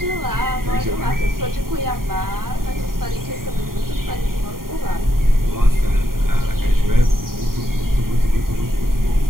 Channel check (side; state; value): left; late; 0.92 ms